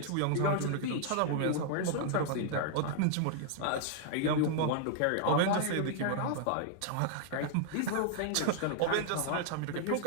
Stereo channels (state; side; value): different; both; correlation -0.01